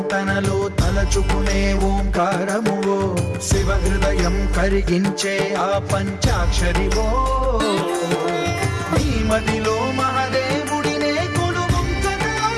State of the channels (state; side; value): identical; both; correlation 1.00